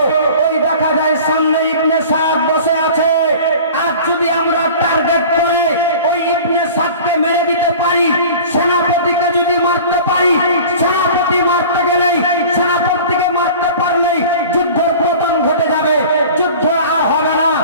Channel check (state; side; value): inverted; both; correlation -0.41